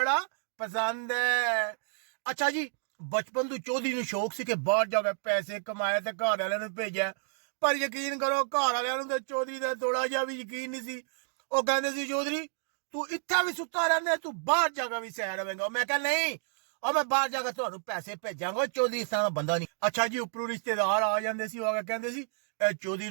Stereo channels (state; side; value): silent; left; digital silence